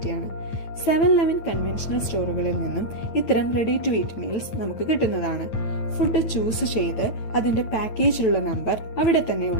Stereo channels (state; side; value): late; right; 9.3 ms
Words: 7-11 കൺവെൻഷണൽ സ്റ്റോറുകളിൽ നിന്നും ഇത്തരം റെഡി ടു ഈറ്റ് മീൽസ് നമുക്ക് കിട്ടുന്നതാണ്. ഫുഡ് ചൂസ് ചെയ്ത് അതിന്റെ പാക്കേജിലുള്ള നമ്പർ അവിടെ